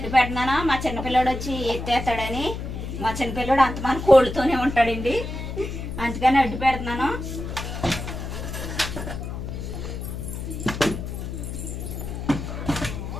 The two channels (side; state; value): left; noise; hum, 6 dB below the sound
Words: పెట్టినాను. మా చిన్నపిల్లడు వచ్చి ఎత్తేస్తాడని. మా చిన్నపిల్లడు అంతమంది కోళ్ళతోనే ఉంటాడండి, అందుకని అడ్డు పెడుతున్నాను.